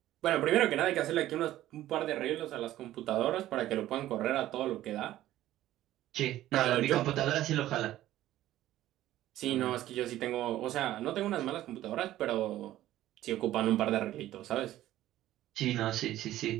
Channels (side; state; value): left; quieter; 14.1 dB